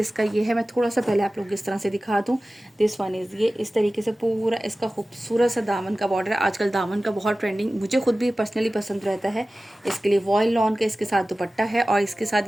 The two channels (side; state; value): both; normal; correlation 0.96